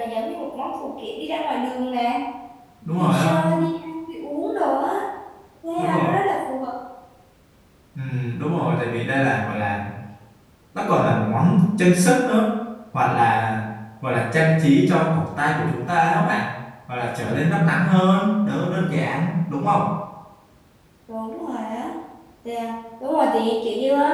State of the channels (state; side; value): identical; both; correlation 1.00